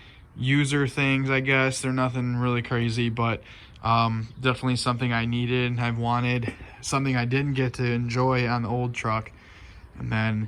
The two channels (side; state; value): both; identical; correlation 1.00